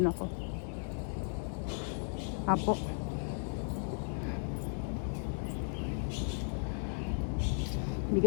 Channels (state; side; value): silent; right; 54 dB below the other